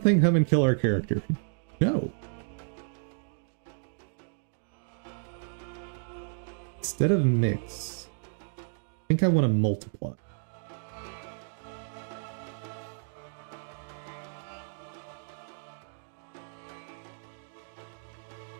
come and kill our character? No. Instead of mix, I think I want to multiply.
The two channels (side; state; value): left; silent; digital silence